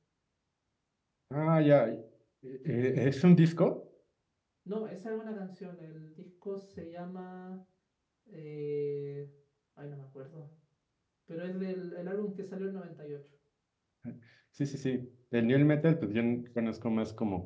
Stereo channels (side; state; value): both; identical; correlation 1.00